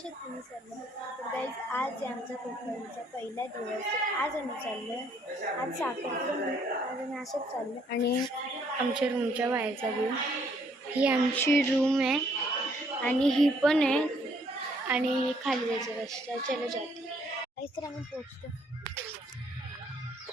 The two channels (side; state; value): both; normal; correlation 0.66